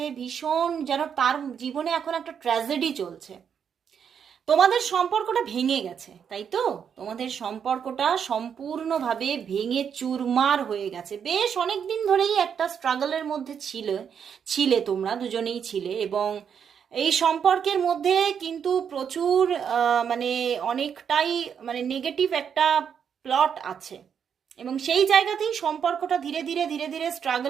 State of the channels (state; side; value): quieter; left; 7.6 dB